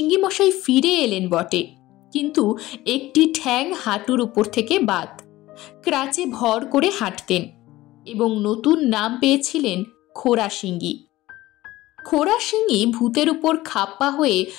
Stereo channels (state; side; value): quieter; right; 17.2 dB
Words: মশাই ফিরে এলেন বটে, কিন্তু একটি ঠ্যাং হাঁটুর উপর থেকে বাদ। ক্রাচে ভর করে হাঁটতেন এবং নতুন নাম পেয়েছিলেন খোরা সিঙ্গি। খোরা সিঙ্গি ভূতের উপর খাপ্পা হয়ে